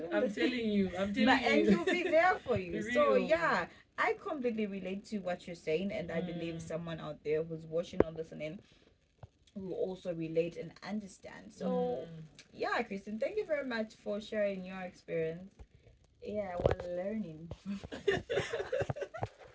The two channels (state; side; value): identical; both; correlation 1.00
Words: on? I'm telling you. And he'll be there for you. So Real. yeah, I completely relate to what you're saying, and I believe someone out there who's watching or listening will also relate and understand. So yeah, Kristen, thank you very much for sharing your experience. Yeah, we're learning.